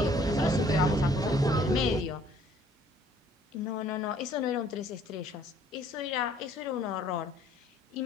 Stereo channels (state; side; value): normal; both; correlation 0.59